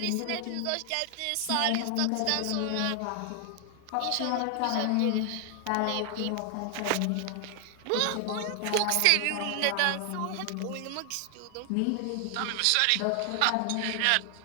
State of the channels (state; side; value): different; both; correlation 0.00